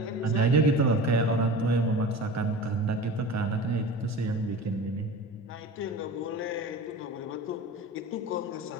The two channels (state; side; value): normal; both; correlation 0.34